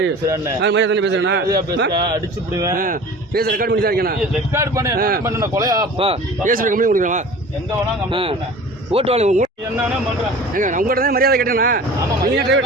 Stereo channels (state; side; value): normal; both; correlation 0.41